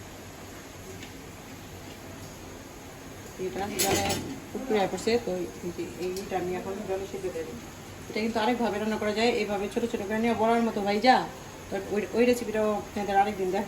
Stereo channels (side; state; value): both; identical; correlation 1.00